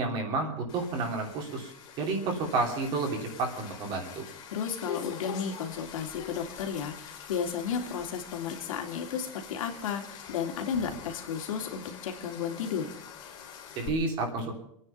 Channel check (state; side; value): normal; both; correlation 0.02